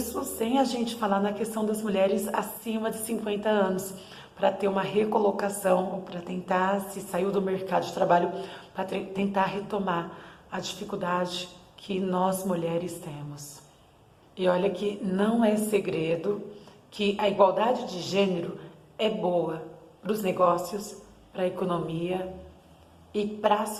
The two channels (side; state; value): both; identical; correlation 1.00